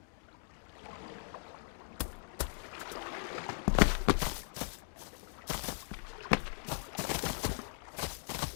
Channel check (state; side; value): silent; right; digital silence